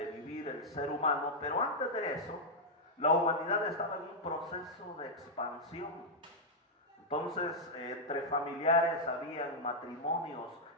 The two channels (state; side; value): normal; both; correlation -0.04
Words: vivir el ser humano. Pero antes de eso, la humanidad estaba en un proceso de expansión. Entonces, entre familiares habían matrimonios